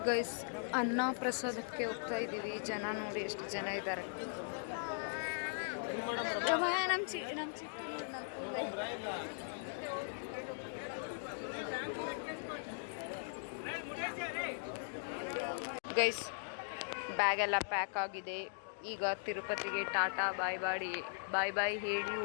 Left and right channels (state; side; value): silent; right; digital silence